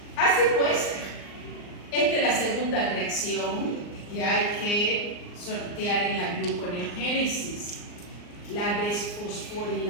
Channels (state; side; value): late; right; 39 ms